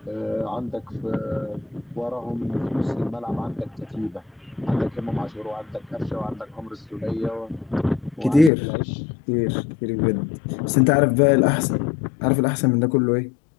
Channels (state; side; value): drops out; right; at 8.5 s